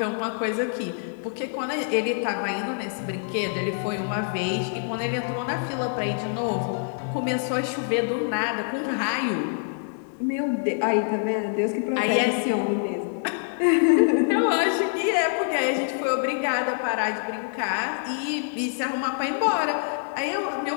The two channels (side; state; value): right; silent; digital silence